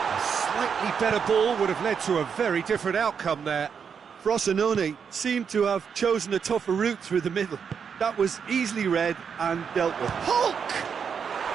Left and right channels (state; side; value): quieter; left; 6.7 dB